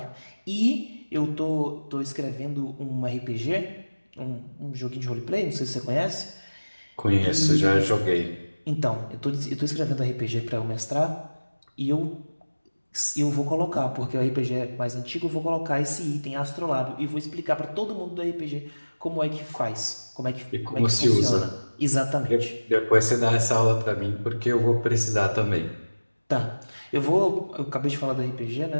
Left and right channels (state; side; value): inverted; both; correlation -1.00